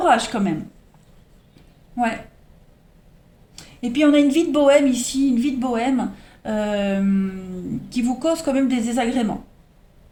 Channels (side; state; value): both; identical; correlation 1.00